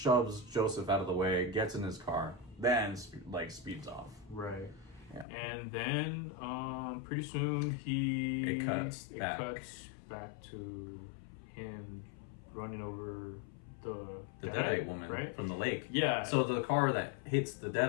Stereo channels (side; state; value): right; drops out; at 5.2 s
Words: Joseph out of the way, gets in his car, then speeds off. Right. Yeah. And then pretty soon it cuts back to him running over the Deadite woman, right? From the lake. Yeah. So the car that hits the